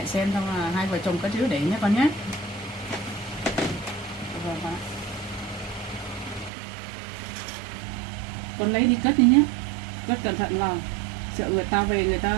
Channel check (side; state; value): left; drops out; at 6.5 s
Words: xem, xong là hai vợ chồng cất giữ để nhé con nhé. Con lấy đi cất đi nhé, cất cẩn thận vào, sợ người ta về người